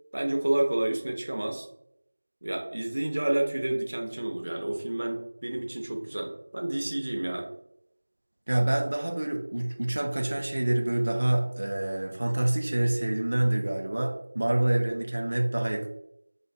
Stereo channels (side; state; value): both; inverted; correlation -1.00